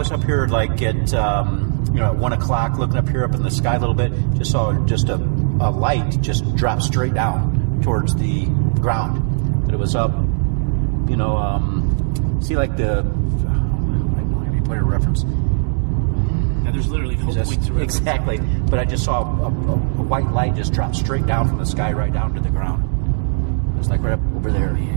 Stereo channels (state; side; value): silent; left; digital silence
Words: up here like at at 1 o'clock, looking up here up in the sky a little bit. Just saw just a light just drop straight down towards the ground. But it was up, see like the. I don't have any point of reference. Now there's literally no point to reference. Exactly, but I just saw a white light just drop straight down from the sky right down to the ground. It was like right up over there. Oh,